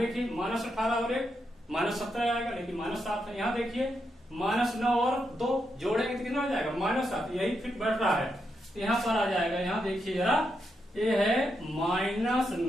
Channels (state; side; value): normal; both; correlation 0.83